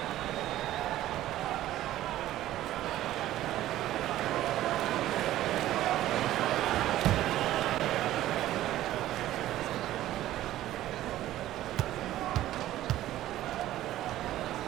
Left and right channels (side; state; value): left; quieter; 14.1 dB